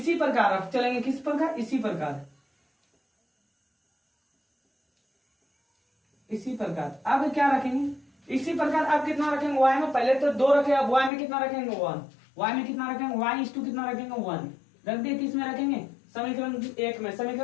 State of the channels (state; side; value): drops out; right; at 11.1 s